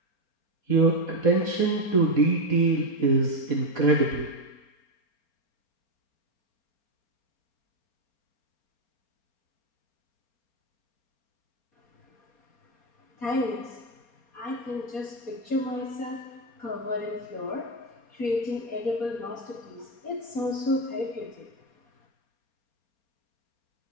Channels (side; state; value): right; late; 4.2 ms